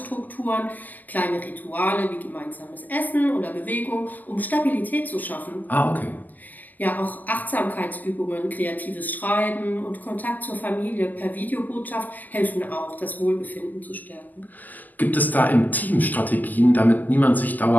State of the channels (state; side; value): late; right; 0.083 ms